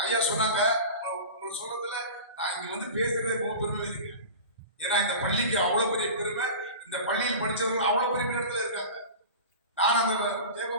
ஐயா சொன்னாங்க, உங்களை சொல்றதுல நான் இங்க வந்து பேசுறதே ரொம்ப பெருமை இருக்கு. ஏன்னா இந்த பள்ளிக்கு அவ்வளவு பெரிய பெருமை, இந்த பள்ளியில் படிச்சவங்க அவ்வளவு பெரிய இடத்துல இருக்காங்க. நான் அந்த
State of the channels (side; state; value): both; inverted; correlation -0.33